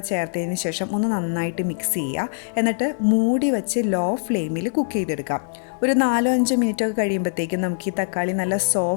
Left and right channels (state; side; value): silent; right; 64 dB below the other